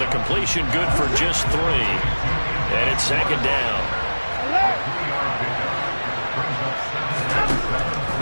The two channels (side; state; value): both; inverted; correlation -1.00